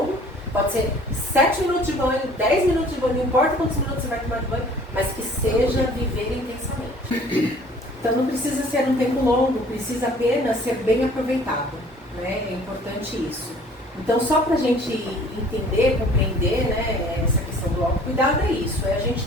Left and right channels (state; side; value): normal; both; correlation 0.52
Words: pode ser 7 minutos de banho, 10 minutos de banho, não importa quantos minutos você vai tomar de banho, mas que seja viver intensamente. Então não precisa ser um tempo longo, precisa apenas ser bem aproveitado, né? É importante isso. Então, só para a gente entender, compreender, né, essa questão do autocuidado é isso, é a gente